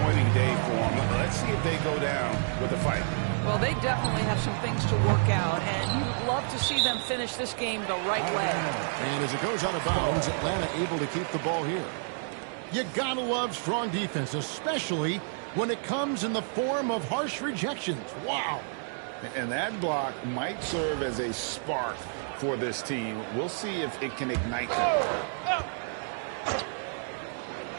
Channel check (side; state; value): left; silent; digital silence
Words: day for him. Let's see if they go down with a fight. Well, they definitely have some things to work out, and you'd love to see them finish this game the right way. And as it goes out of bounds, Atlanta able to keep the ball here. You gotta love strong defense, especially when it comes in the form of harsh rejections. Wow. And that block might serve as a spark for this team. We'll see if it can ignite them.